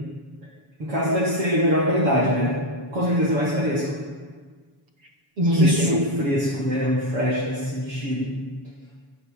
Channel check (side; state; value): left; late; 7.1 ms